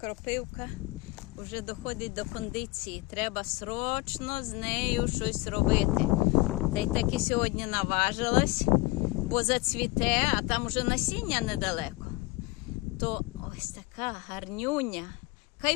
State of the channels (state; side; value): quieter; right; 22.5 dB